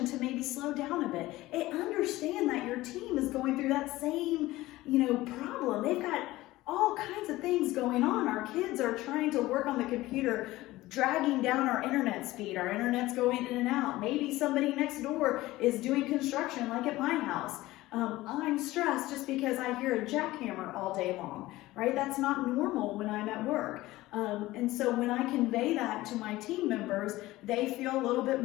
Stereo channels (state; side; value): quieter; right; 17.7 dB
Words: to maybe slow down a bit. And understand that your team is going through that same, problem. They've got all kinds of things going on. Our kids are trying to work on the computer, dragging down our internet speed. Our internet's going in and out. Maybe somebody next door is doing construction like at my house. I'm stressed just because I hear a jackhammer all day long, right? That's not normal when I'm at work. And so when I convey that to my team members, they feel a little bit